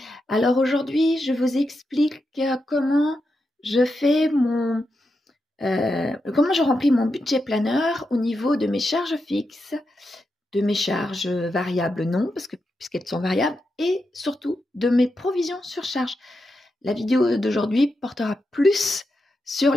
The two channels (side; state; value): both; normal; correlation 0.87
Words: Alors aujourd'hui, je vous explique comment je fais comment je remplis mon budget planeur au niveau de mes charges fixes, de mes charges variables non, puisqu'elles sont variables, et surtout de mes provisions sur charge. La vidéo d'aujourd'hui portera plus sur